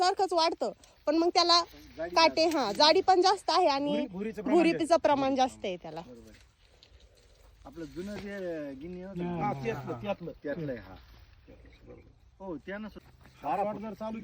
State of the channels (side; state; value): both; identical; correlation 1.00